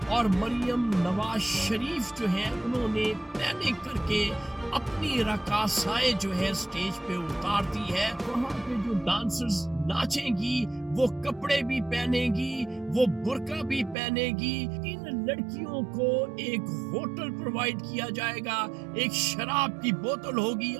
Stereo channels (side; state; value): left; drops out; at 14.0 s